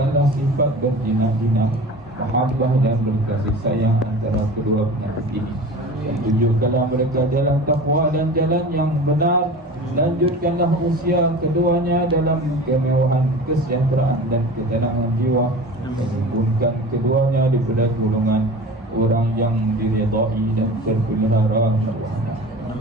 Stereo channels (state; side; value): normal; both; correlation 0.36